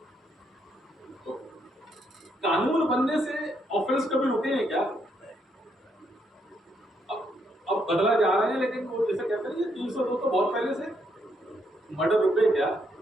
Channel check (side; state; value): both; normal; correlation 0.75